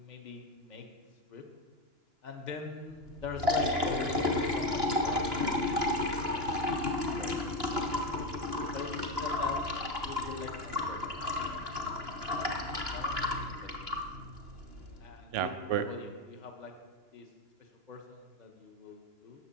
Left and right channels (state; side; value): late; left; 2.9 ms